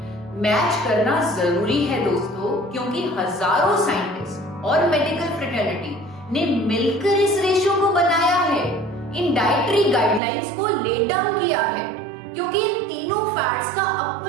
मैच करना जरूरी है दोस्तों, क्योंकि हजारों साइंटिस्ट और मेडिकल फ्रेटर्निटी ने मिलकर इस रेशो को बनाया है, इन डाइटरी गाइडलाइंस को ले डाउन किया है, क्योंकि इन तीनों फैट्स का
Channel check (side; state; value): left; drops out; at 10.2 s